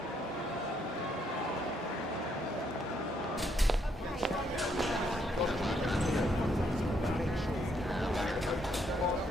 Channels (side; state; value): both; normal; correlation 0.73